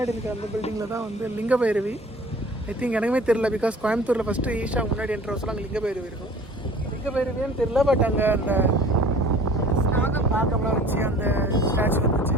இருக்க அந்த பில்டிங்கில் தான் வந்து லிங்க பைரவி. ஐ திங்க் எனக்குமே தெரியல, பிகாஸ் கோயம்புத்தூரில் ஃபஸ்ட்டு ஈஷா முன்னாடி என்ற வருஷம் அங்கே லிங்க பைரவி இருக்கும். லிங்க பைரவின்னு தெரியல, பட் அங்கே அந்த நாகம்லாம் வச்சு அந்த ஸ்டாச்சு வந்துச்சு.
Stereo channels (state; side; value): normal; both; correlation 0.47